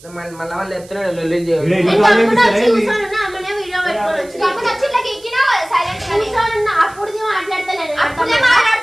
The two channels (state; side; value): noise; right; hiss, 23 dB below the sound